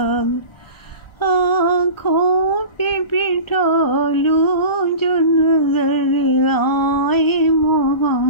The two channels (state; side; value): late; right; 1.3 ms